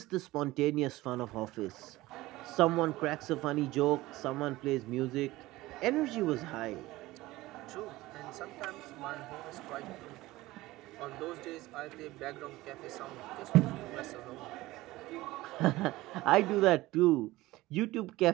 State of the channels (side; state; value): left; quieter; 18.4 dB